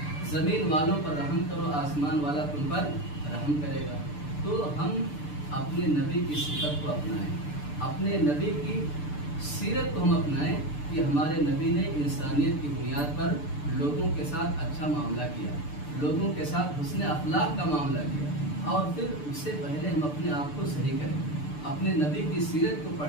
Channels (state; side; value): late; right; 6.8 ms